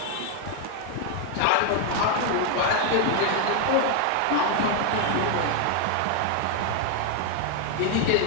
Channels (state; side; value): different; both; correlation 0.00